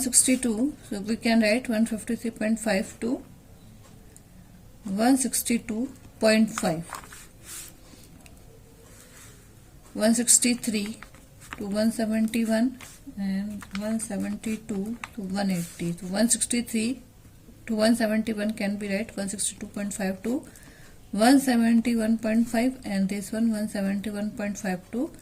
so we can write 153.5 to 162.5, 163 to 171 and 172 to 180. So 163 to 171 can be right 162.5 to 171.5 and this one 171.5 to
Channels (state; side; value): identical; both; correlation 1.00